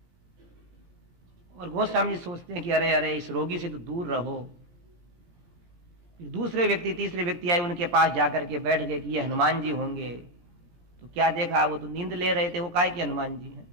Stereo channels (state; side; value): late; left; 17 ms